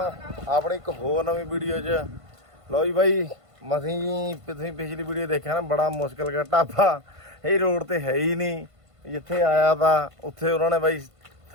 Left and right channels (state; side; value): late; left; 1.5 ms